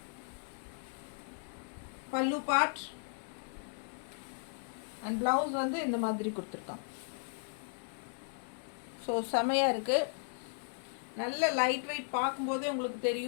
பல்லு பார்ட் அண்ட் ப்ளவுஸ் வந்து இந்த மாதிரி கொடுத்துருக்காங்க. ஸோ செமையாக இருக்குது. நல்ல லைட் வெயிட், பார்க்கும்போதே உங்களுக்கு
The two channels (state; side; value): silent; right; digital silence